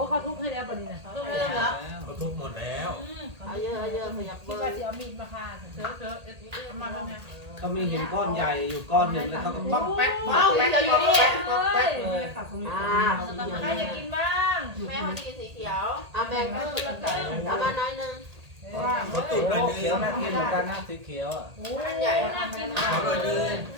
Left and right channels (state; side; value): late; left; 1.8 ms